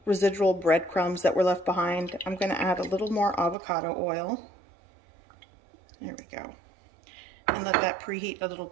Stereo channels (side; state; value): left; drops out; at 3.6 s